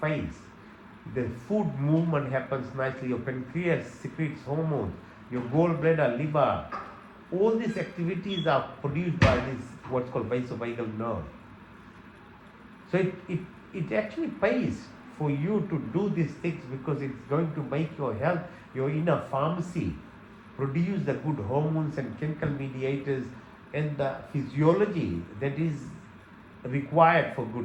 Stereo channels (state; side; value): identical; both; correlation 1.00